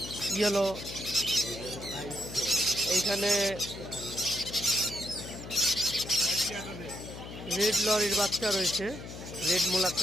ইয়েলো, এইখানে রেড লরির বাচ্চা রয়েছে, রেড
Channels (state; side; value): noise; left; hum, 11 dB below the sound